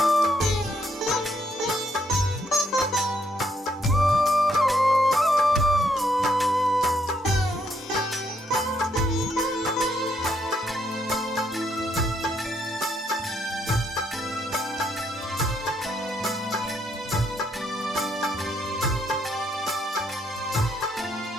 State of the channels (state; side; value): normal; both; correlation 0.73